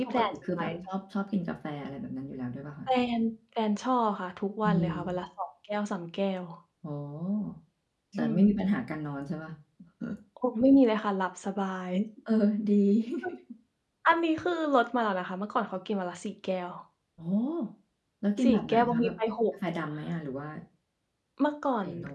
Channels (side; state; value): both; identical; correlation 1.00